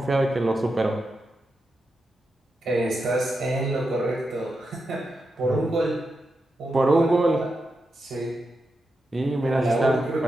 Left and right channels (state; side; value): normal; both; correlation 0.87